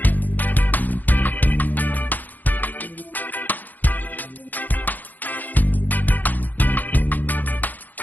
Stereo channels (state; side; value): late; right; 0.084 ms